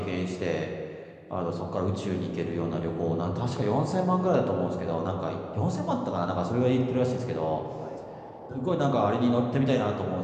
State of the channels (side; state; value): both; identical; correlation 1.00